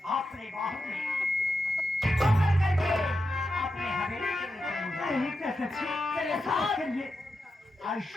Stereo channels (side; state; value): both; normal; correlation 0.88